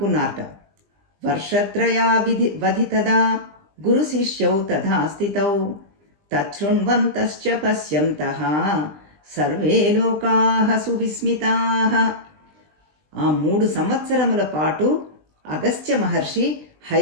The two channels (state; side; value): late; left; 20 ms